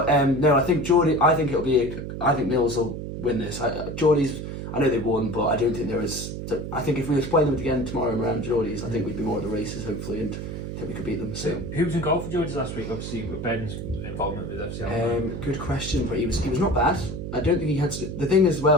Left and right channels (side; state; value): right; noise; hum, 6 dB below the sound